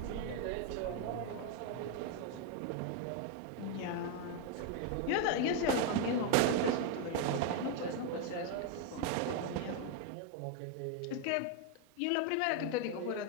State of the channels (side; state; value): both; different; correlation 0.01